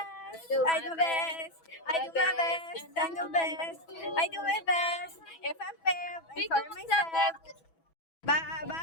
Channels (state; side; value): late; right; 6.1 ms